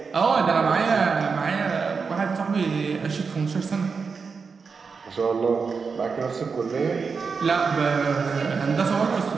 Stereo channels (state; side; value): quieter; left; 5.2 dB